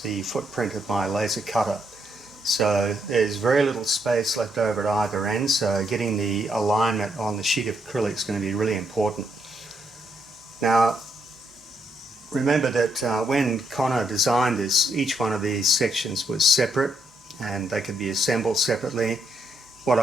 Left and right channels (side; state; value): both; normal; correlation 0.76